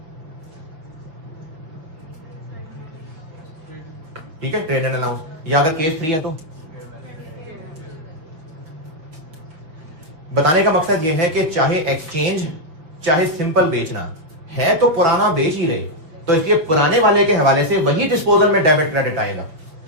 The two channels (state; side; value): late; left; 6.1 ms